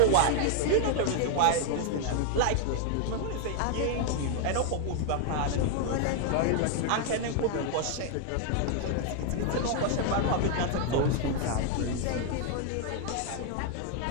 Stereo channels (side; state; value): both; different; correlation 0.00